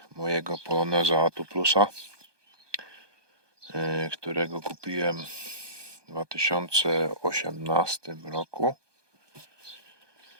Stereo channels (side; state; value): left; late; 1.2 ms